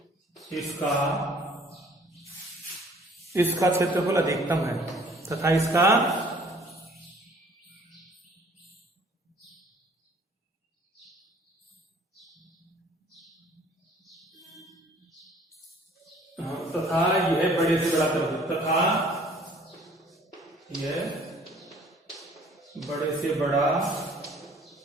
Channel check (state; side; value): normal; both; correlation 0.55